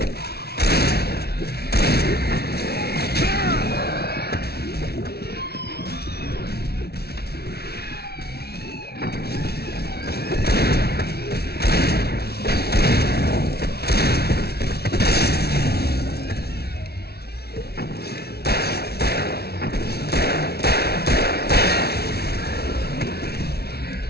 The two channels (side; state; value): right; late; 0.46 ms